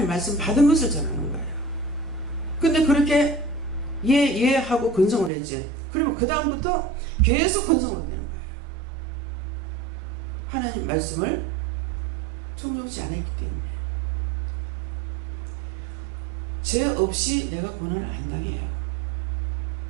말씀 받은 것을 전하는 거예요. 근데 그렇게 예 하고 근성을 했지. 그러면 그 다음부터 계속 근성으로 되는 거예요. 하나님 말씀을 청종치 않았기 때문에 죄 없이 내가 고난을 안 당해요.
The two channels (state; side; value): drops out; left; at 5.3 s